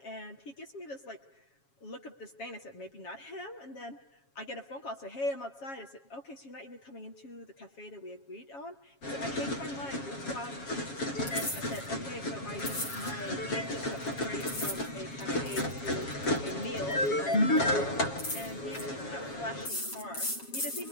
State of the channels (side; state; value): right; late; 7.3 ms